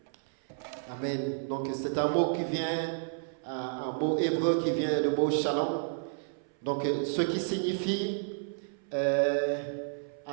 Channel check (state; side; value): silent; left; 57 dB below the other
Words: Amen. Donc c'est un mot qui vient, un mot hébreu qui vient du mot shalom. Donc ce qui signifie